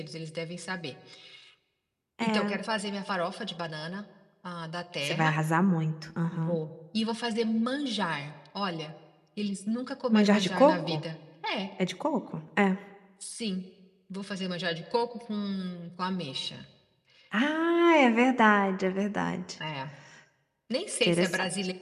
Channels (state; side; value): identical; both; correlation 1.00